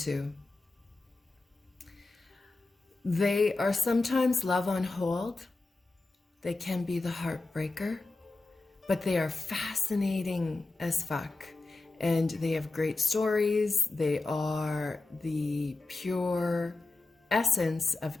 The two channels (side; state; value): right; quieter; 3.3 dB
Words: They are sometimes love on hold. They can be the heartbreaker, but they are fascinating as fuck. And they have great stories. They are the pure essence of